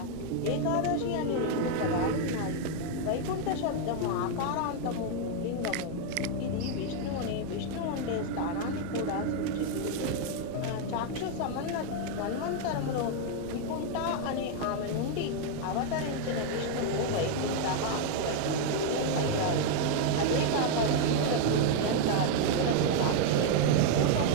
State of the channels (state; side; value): different; both; correlation 0.00